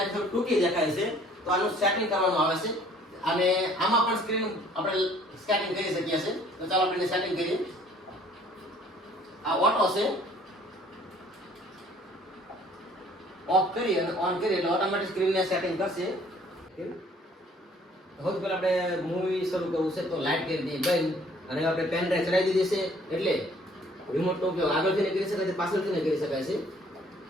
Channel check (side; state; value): both; normal; correlation 0.57